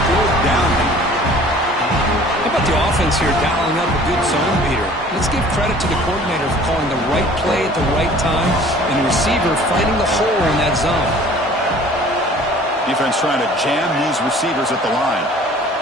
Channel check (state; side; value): normal; both; correlation 0.50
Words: down. How about the offense here dialing up a good zone beater? Let's give credit to the coordinator for calling the right play at the right time and the receiver finding the hole in that zone. Defense trying to jam these receivers at the line.